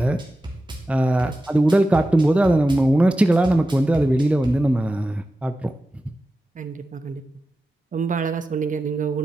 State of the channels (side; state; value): both; normal; correlation 0.93